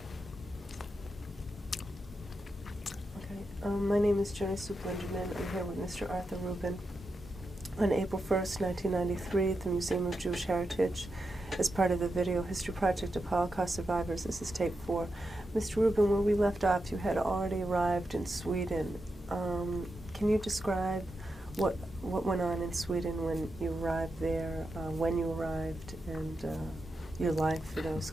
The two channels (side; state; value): both; normal; correlation 0.87